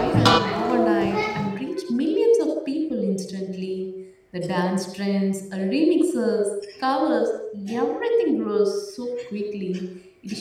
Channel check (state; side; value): identical; both; correlation 1.00